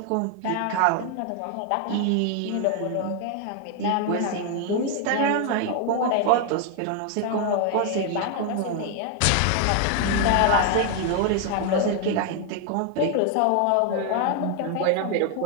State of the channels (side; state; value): both; different; correlation 0.00